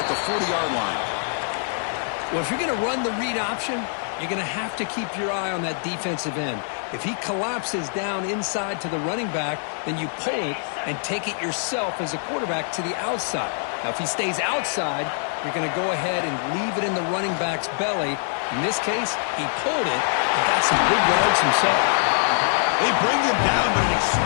the 40-yard line. Well, if you're going to run the read option, you're going to have to keep your eye on that defensive end. If he collapses down inside to the running back, then you pull it and take it yourself as a quarterback to the outside. Now, if he stays outside, you're going to go ahead and leave it in the running back's belly. In this case, he pulled it and got some good yards himself. They bring him down, but an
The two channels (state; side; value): silent; right; digital silence